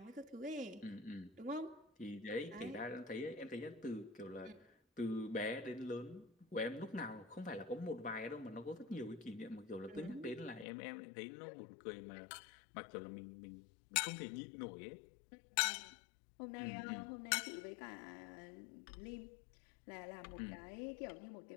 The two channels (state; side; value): drops out; right; at 10.7 s